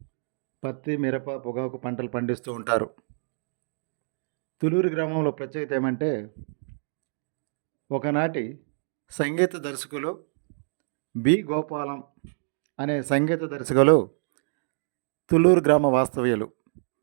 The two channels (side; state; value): left; silent; digital silence